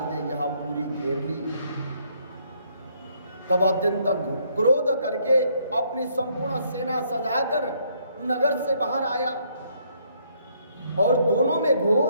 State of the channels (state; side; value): inverted; both; correlation -0.69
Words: ने यह पुरी घेर ली, तब अत्यंत क्रोध करके अपनी संपूर्ण सेना सजाकर नगर से बाहर आया और दोनों में